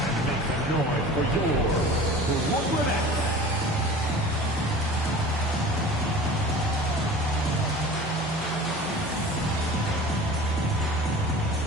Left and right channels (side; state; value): both; normal; correlation 0.40